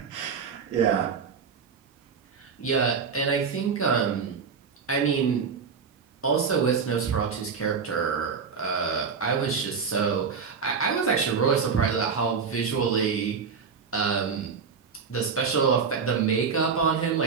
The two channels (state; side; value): quieter; left; 5.9 dB